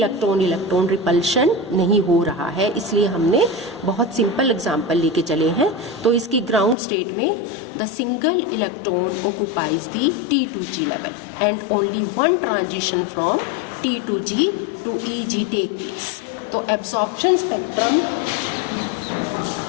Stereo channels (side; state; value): right; drops out; at 6.8 s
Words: रिपल्शन नहीं हो रहा है, इसलिए हमने बहुत सिंपल एग्जांपल लेके चले हैं। तो इसकी ग्राउंड स्टेट में the single electron occupies the T2G level and only one transition from T2G to EG take place. तो absorption spectrum